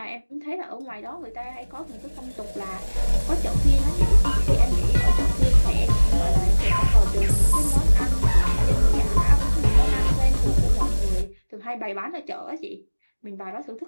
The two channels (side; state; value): both; inverted; correlation -1.00